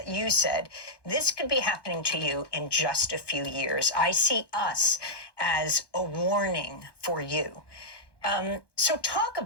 said, this could be happening to you in just a few years. I see us as a warning for you. So talk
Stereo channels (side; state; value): right; late; 1.2 ms